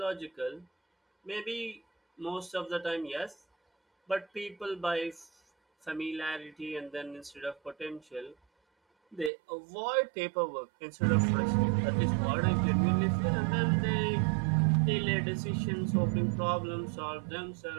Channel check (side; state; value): left; drops out; at 9.3 s